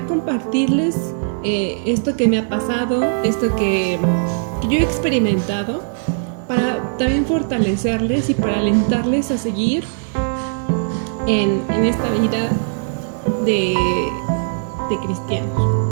compartirles esto que me ha pasado, esto que yo he experimentado, para también fortalecerles y para alentarles a seguir en esta vida de cristianos.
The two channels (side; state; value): left; silent; digital silence